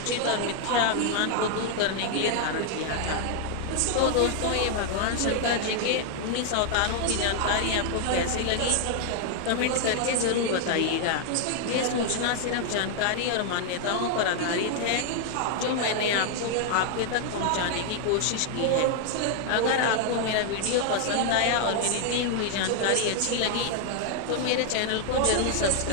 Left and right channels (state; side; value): different; both; correlation 0.00